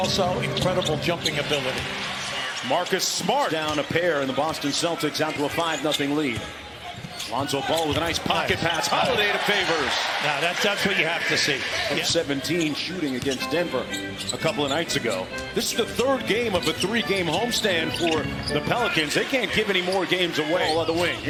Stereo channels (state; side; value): identical; both; correlation 1.00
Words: incredible jumping ability. Marcus Smart down a pair, and the Boston Celtics out to a 5-0 lead. Lonzo Ball with a nice pocket pass. Holiday to Favors. Now that's what you have to see. 17 shooting against Denver a couple of nights ago. This is the third game of a 3-game homestand for the Pelicans. They can't give any more games away. Ball on the wing.